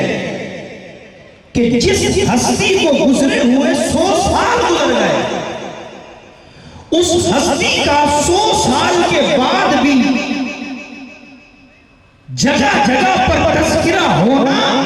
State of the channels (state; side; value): identical; both; correlation 1.00